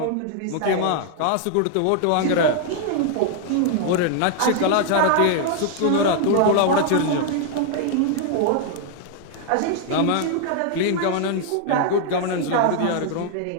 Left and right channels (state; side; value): different; both; correlation 0.00